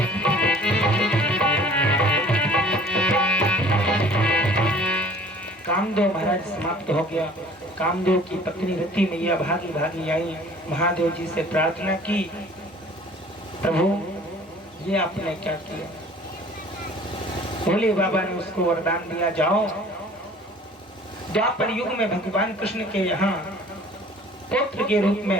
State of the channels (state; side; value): normal; both; correlation 0.50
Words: कामदेव महाराज समाप्त हो गया। कामदेव की पत्नी रति मैया भागी भागी आई, महादेव जी से प्रार्थना की, प्रभु ये आपने क्या किया? भोले बाबा ने उसको वरदान दिया, जाओ द्वापर युग में भगवान कृष्ण के यहाँ पुत्र के रूप